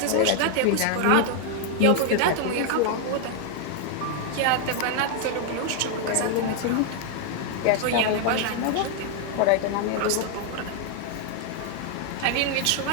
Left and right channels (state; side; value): different; both; correlation 0.00